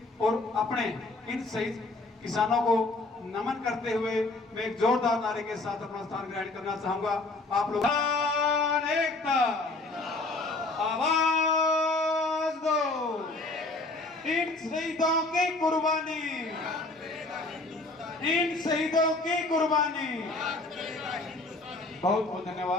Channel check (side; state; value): right; quieter; 3.2 dB